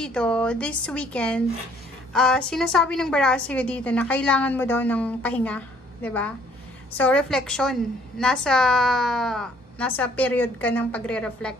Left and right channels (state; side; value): normal; both; correlation 0.61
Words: this weekend, sinasabi ng baraha sa'yo dito na kailangan mo daw ng pahinga, 'di ba? So, reflection. Nasa period ka ng pagre-reflect,